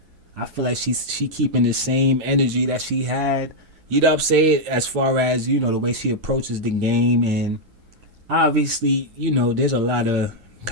I feel like she keeping the same energy that she had. You know what I'm saying? As far as, the way she approaches the game. And obviously, there's a lot of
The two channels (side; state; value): left; late; 9.9 ms